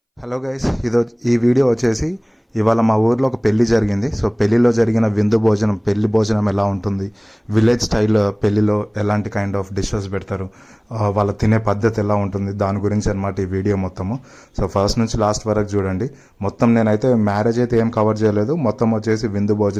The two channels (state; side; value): identical; both; correlation 1.00